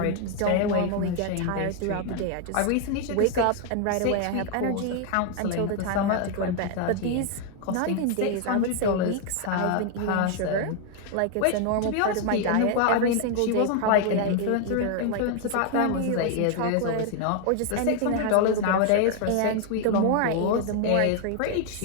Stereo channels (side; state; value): both; different; correlation 0.00